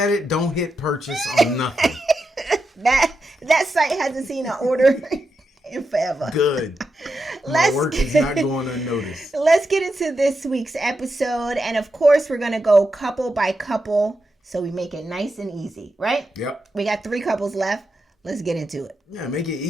it. Don't hit purchase on nothing. That site hasn't seen an order in forever. Good. My work is not going unnoticed. Let's get into this week's episode. And of course, we're going to go couple by couple so we make it nice and easy, right? Yep. We got 3 couples left. Let's get into it. Yeah, make it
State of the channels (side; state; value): both; normal; correlation 0.87